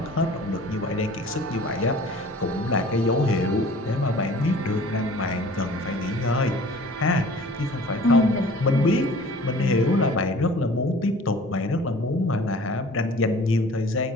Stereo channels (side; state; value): both; normal; correlation 0.47